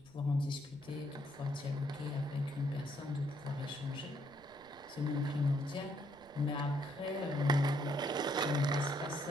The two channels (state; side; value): noise; right; rumble, 26 dB below the sound